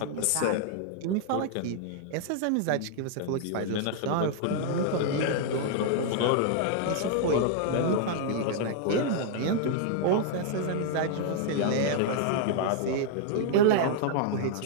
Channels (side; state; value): both; different; correlation 0.00